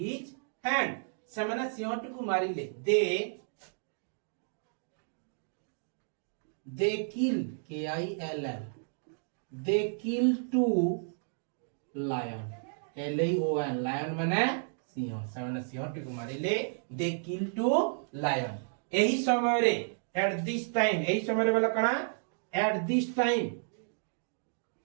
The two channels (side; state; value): left; silent; digital silence